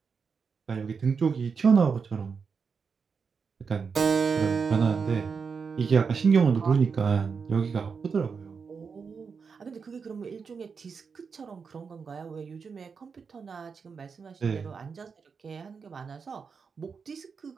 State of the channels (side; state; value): left; quieter; 5.6 dB